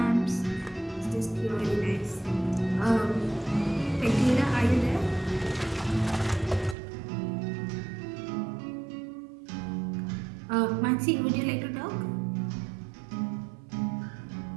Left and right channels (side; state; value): left; drops out; at 6.8 s